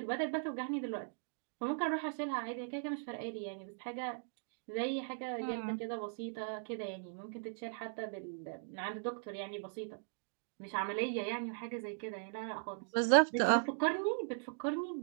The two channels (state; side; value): silent; left; digital silence